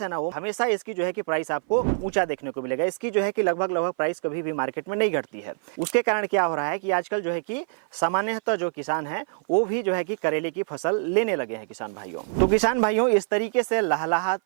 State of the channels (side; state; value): left; silent; 57 dB below the other